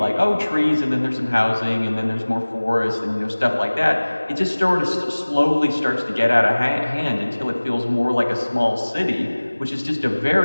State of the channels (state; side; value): inverted; both; correlation -1.00